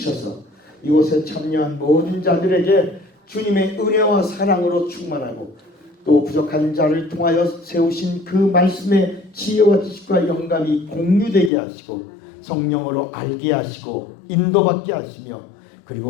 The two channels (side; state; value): right; drops out; at 11.5 s